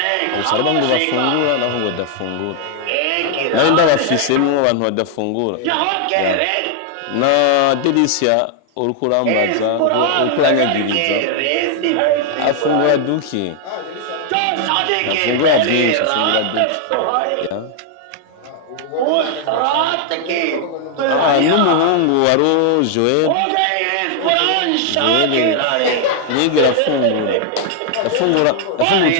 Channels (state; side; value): different; both; correlation 0.00